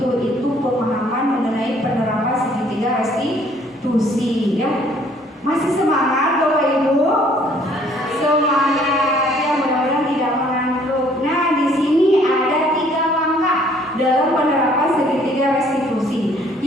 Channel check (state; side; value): normal; both; correlation 0.60